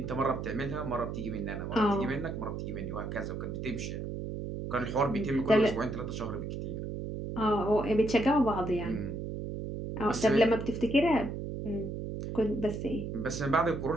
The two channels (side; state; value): right; noise; hum, 5 dB below the sound